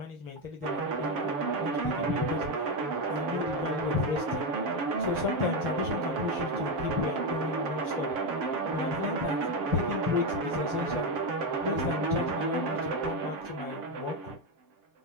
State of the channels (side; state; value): left; late; 6.9 ms